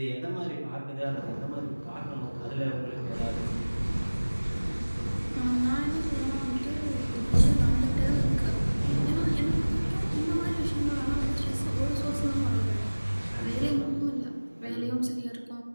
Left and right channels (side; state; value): both; inverted; correlation -1.00